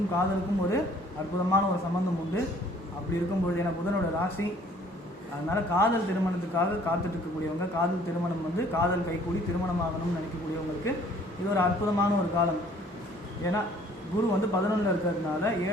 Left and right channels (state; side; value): normal; both; correlation 0.57